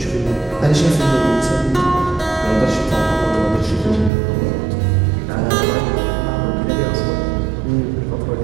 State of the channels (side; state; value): left; drops out; at 4.1 s